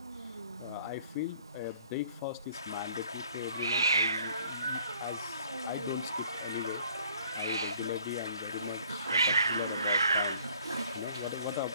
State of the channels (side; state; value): both; inverted; correlation -0.58